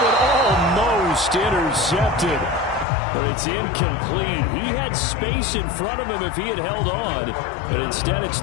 one almost intercepted. But it's incomplete. He had space in front of him if he had held on, but instead it's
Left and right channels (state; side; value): drops out; right; at 2.9 s